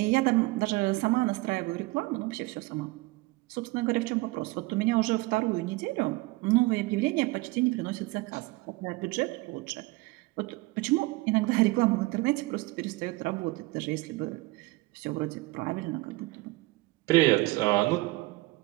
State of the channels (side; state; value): left; quieter; 21.8 dB